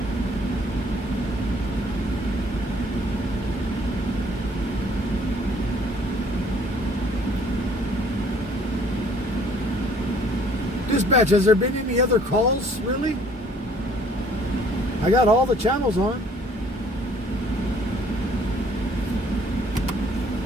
Dispatch, has there been any other calls, really? I got all the channels on.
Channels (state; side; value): normal; both; correlation 0.59